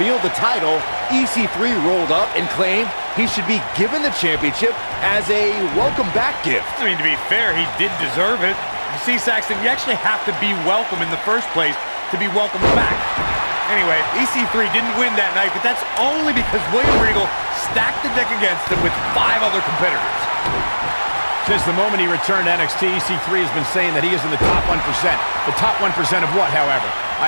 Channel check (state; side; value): inverted; both; correlation -1.00